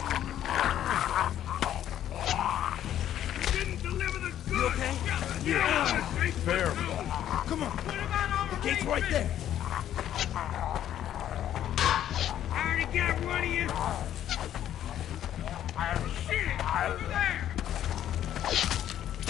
You didn't deliver the goods. You okay? Yeah. Fair. Come on! What about all The gate's right there! I already got one of you. Shit, over there.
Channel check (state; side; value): quieter; right; 11.2 dB